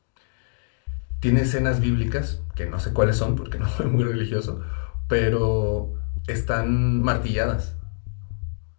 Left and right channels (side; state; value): right; silent; digital silence